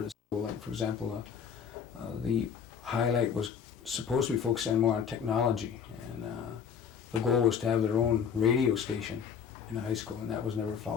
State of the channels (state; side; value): quieter; right; 7.3 dB